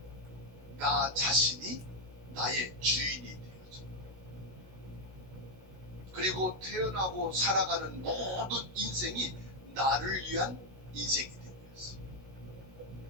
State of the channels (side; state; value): left; late; 16 ms